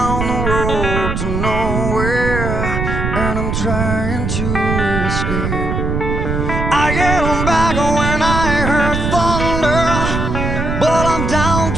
the road to nowhere, and I'm trying to escape. I get back when I heard thunder, but I'm down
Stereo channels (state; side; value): noise; right; rumble, 2 dB below the sound